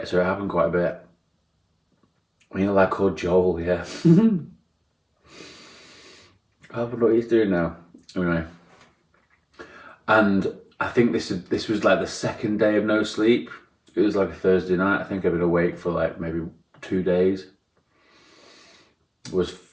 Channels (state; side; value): identical; both; correlation 1.00